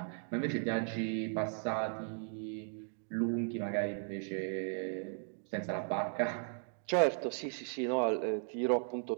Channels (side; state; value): left; silent; 53 dB below the other